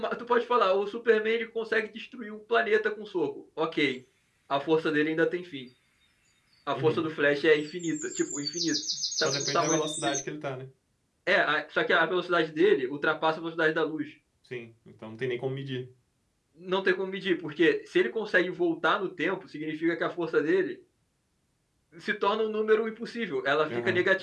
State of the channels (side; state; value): both; identical; correlation 1.00